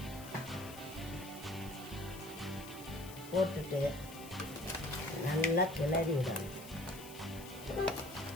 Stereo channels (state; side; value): noise; left; hiss, 15 dB below the sound